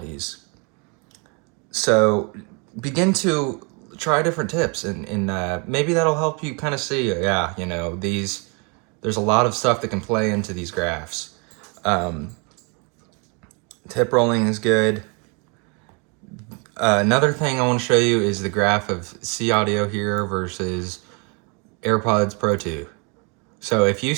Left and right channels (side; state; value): left; quieter; 33.1 dB